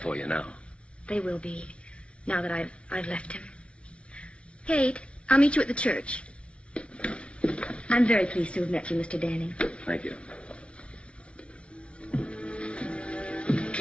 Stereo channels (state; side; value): late; right; 0.060 ms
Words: you now. They will be, now that I've left him. Kate, I'll meet you at the church. I'm very pleased to have met you, Mr. Danning. Thank you.